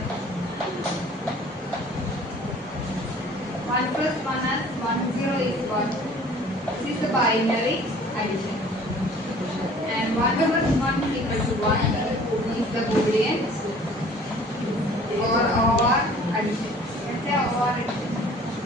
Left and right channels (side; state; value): both; normal; correlation 0.51